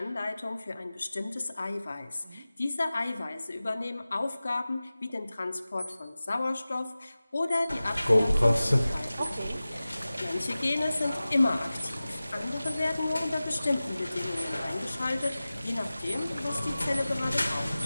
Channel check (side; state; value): both; inverted; correlation -0.97